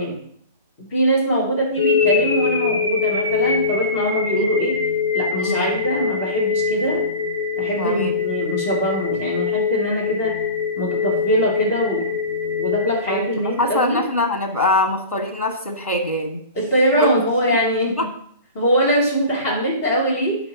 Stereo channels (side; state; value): both; inverted; correlation -0.35